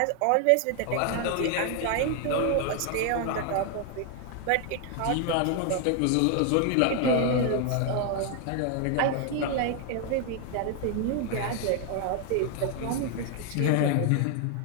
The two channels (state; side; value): different; both; correlation 0.00